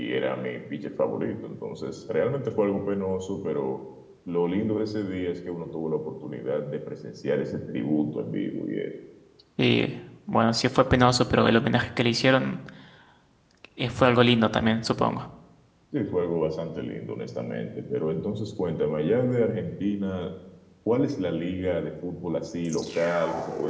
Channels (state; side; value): identical; both; correlation 1.00